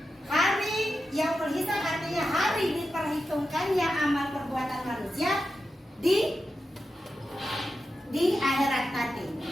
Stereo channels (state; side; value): normal; both; correlation 0.90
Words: Hari yaumul hisab artinya hari diperhitungkannya amal perbuatan manusia di akhirat nanti.